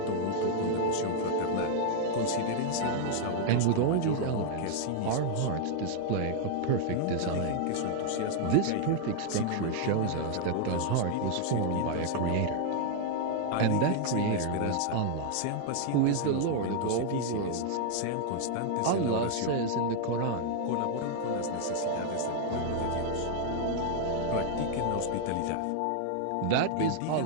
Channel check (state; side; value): different; both; correlation 0.00